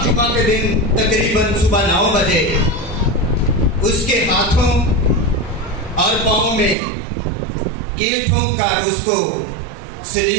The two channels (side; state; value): left; drops out; at 6.8 s